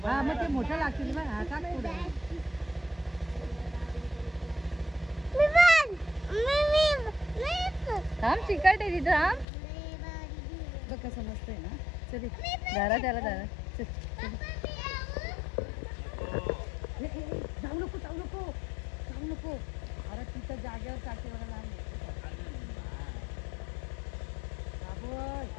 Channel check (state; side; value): drops out; right; at 9.5 s